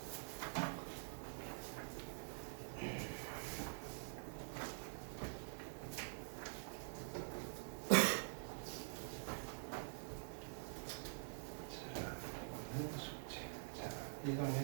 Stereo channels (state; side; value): silent; left; digital silence